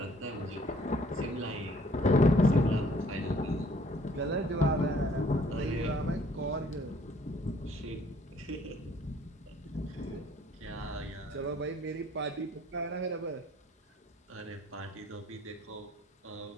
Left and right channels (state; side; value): normal; both; correlation 0.60